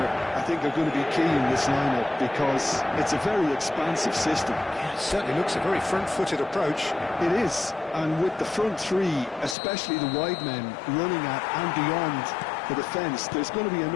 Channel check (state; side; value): drops out; right; at 9.6 s